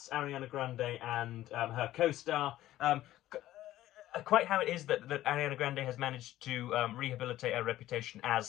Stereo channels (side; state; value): right; quieter; 14.4 dB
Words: Ariana Grande and her co-star. Quite how it is that Ariana Grande has managed to rehabilitate her reputation